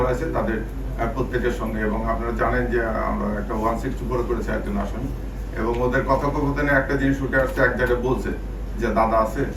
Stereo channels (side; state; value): both; identical; correlation 1.00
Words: আছে তাদের প্রত্যেকের সঙ্গে, এবং আপনারা জানেন যে আমরা একটা 164 করেছি একজন আসামি, এবং ওদের কথোপকথনে একটা জিনিস উঠে আসছে, এক জায়গায় বলছে যে দাদা আছে,